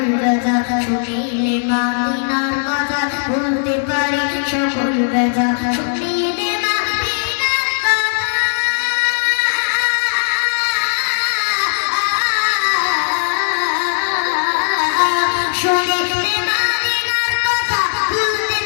ব্যথা, শুনিলে মদিনার কথা বলতে পারি সকল ব্যথা, শুনিলে মদিনার কথা, শুনিলে মদিনার কথা বলতে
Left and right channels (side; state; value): right; silent; digital silence